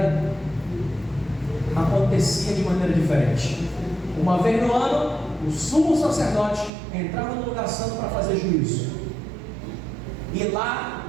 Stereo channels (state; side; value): drops out; left; at 6.7 s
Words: acontecia de maneira diferente. Uma vez no ano, o sumo sacerdote entrava no lugar santo para fazer juízo. E